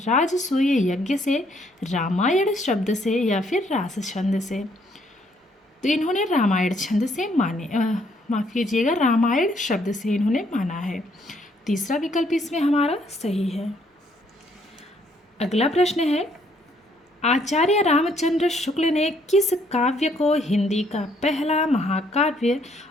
यज्ञ से, रामायण शब्द से या फिर रास छंद से? तो इन्होंने रामायण छंद से माने, माफ कीजिएगा, रामायण शब्द से इन्होंने माना है। तीसरा विकल्प इसमें हमारा सही है। अगला प्रश्न है, आचार्य रामचंद्र शुक्ल ने किस काव्य को हिंदी का पहला महाकाव्य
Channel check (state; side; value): normal; both; correlation 0.68